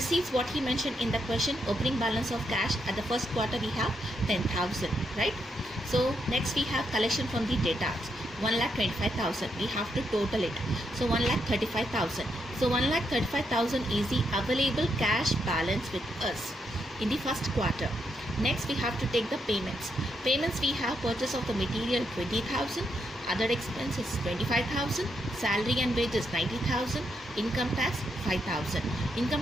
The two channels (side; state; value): both; normal; correlation 0.80